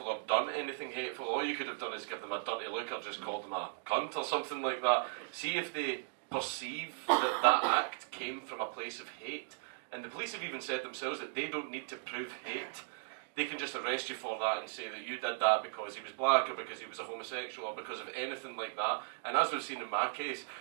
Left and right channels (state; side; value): silent; left; digital silence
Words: or done anything hateful. All you could have done is give them a dirty look or just called them a cunt or something like that. See if they perceive that that act came from a place of hate. And the police have even said themselves that they don't need to prove hate. They can just arrest you for that and say that you did that because he was black or because he was a homosexual or because of anything like that. And as we've seen in my case,